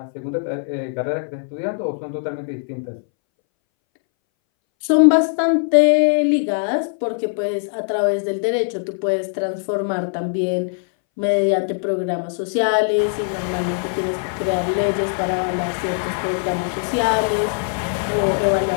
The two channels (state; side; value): silent; right; 63 dB below the other